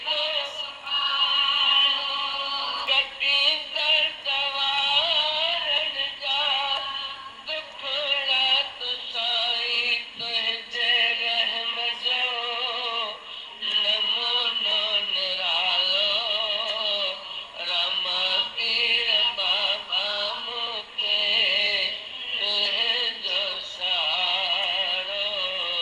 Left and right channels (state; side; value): identical; both; correlation 1.00